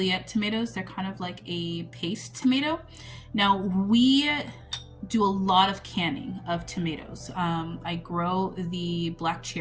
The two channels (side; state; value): both; identical; correlation 1.00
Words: tomatoes. They're kind of like a paste tomato. Now we do a lot of canning of tomatoes. I grow the black